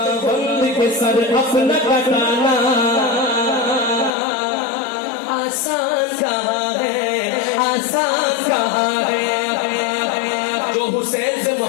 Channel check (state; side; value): drops out; right; at 4.1 s